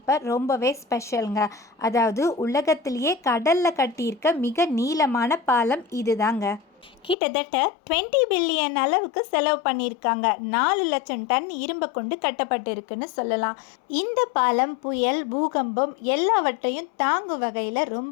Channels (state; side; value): drops out; right; at 7.2 s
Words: ரொம்பவே ஸ்பெஷலுங்க. அதாவது உலகத்திலேயே கடலில் கட்டியிருக்க மிக நீளமான பாலம் இது தாங்க. கிட்டத்தட்ட 20 பில்லியன் அளவுக்கு செலவு பண்ணியிருக்காங்க. 4 லட்சம் டன் இரும்பை கொண்டு கட்டப்பட்டிருக்குன்னு சொல்லலாம். இந்த பாலம் புயல், பூகம்பம் எல்லாவற்றையும் தாங்கும் வகையில்